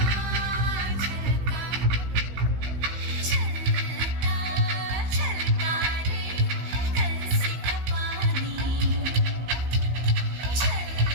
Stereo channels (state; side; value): late; left; 16 ms